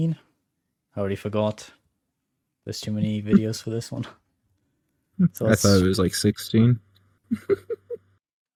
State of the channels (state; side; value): identical; both; correlation 1.00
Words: I already forgot. There's too many videos for this one. So I thought let's it was like 16.